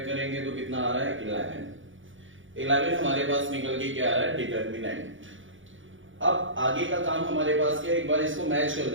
करेंगे तो कितना आ रहा है 11 हमारे पास निकल के क्या आ रहा है, डिटरमिनेंट। अब आगे का काम हमारे पास क्या है, एक बार इसको मैच कर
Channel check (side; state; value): left; late; 0.57 ms